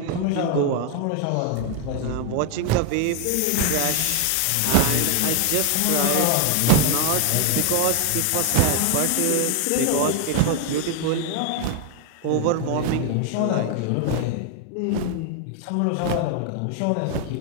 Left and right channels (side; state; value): both; different; correlation 0.01